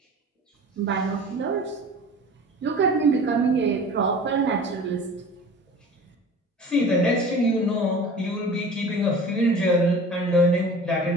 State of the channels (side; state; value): both; normal; correlation 0.41